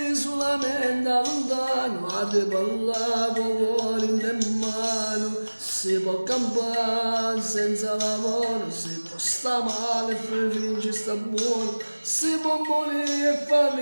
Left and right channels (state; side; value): inverted; both; correlation -1.00